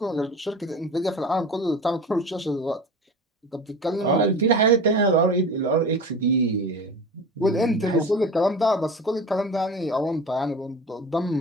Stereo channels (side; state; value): both; normal; correlation 0.33